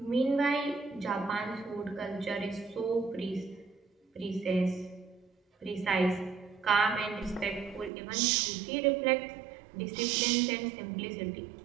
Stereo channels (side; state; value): left; drops out; at 7.9 s